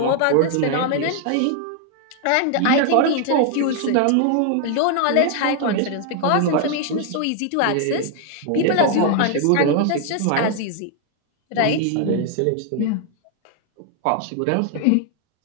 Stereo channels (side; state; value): both; different; correlation 0.00